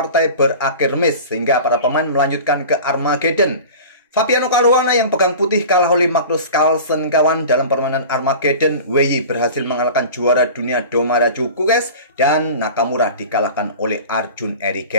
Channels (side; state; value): both; inverted; correlation -0.37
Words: berakhir remis, sehingga para pemain melanjutkan ke Armageddon. Fabiano Caruana yang pegang putih kalah oleh Magnus Carlsen kawan. Dalam permainan Armageddon, Wei berhasil mengalahkan juara dunia Domara Djokovic, dan Nakamura dikalahkan oleh Arjun